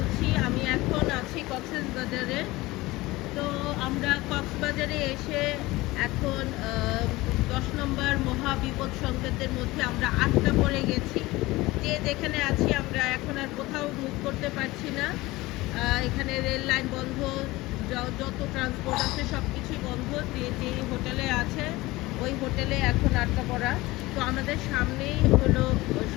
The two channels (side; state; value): right; quieter; 19.9 dB